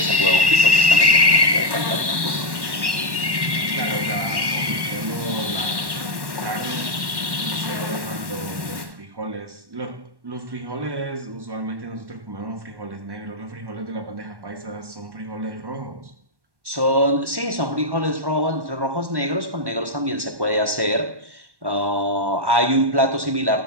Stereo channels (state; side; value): late; left; 1.1 ms